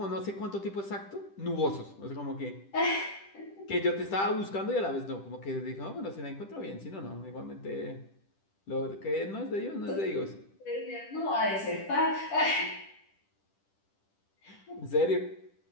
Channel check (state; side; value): late; right; 10 ms